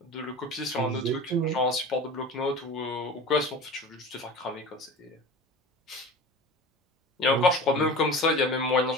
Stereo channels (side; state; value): both; normal; correlation 0.35